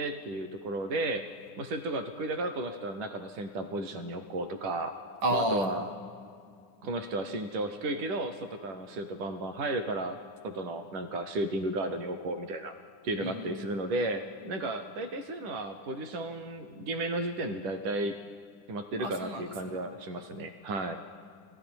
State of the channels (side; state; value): left; late; 9.9 ms